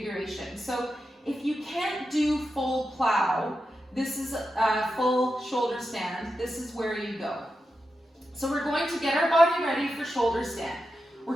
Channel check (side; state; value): both; normal; correlation 0.89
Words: So if you can't do full plow, this is a full shoulder stand. This is where you go. So we're going to get our body ready for shoulder stand.